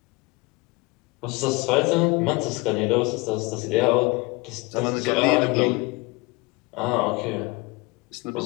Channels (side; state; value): right; quieter; 25.5 dB